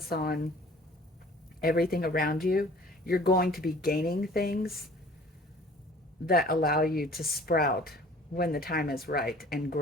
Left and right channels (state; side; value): normal; both; correlation 0.50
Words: on everything around you you're going to be gaining things that allow you to sprout when the time is right and